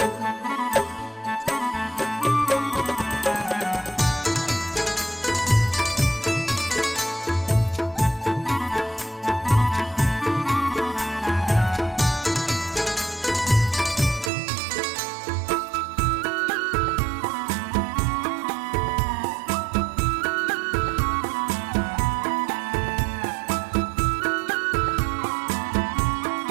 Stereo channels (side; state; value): left; drops out; at 14.3 s